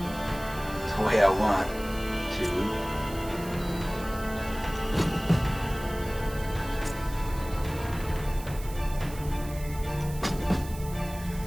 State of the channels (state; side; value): noise; right; hiss, 16 dB below the sound